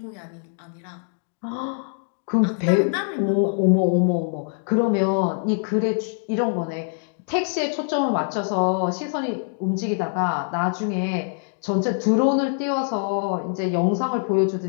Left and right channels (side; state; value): right; silent; digital silence